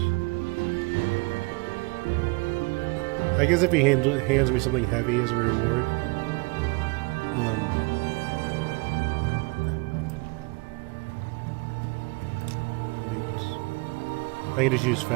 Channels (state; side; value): quieter; left; 28.3 dB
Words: I guess if he hands me something heavy as a reward. Boots. I can just use